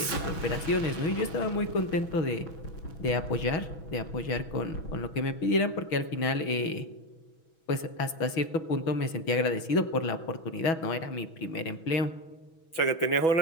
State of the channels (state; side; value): late; right; 6.2 ms